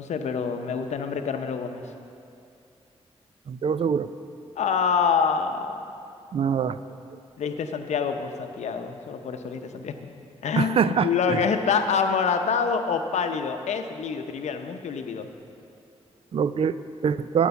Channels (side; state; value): both; normal; correlation 0.28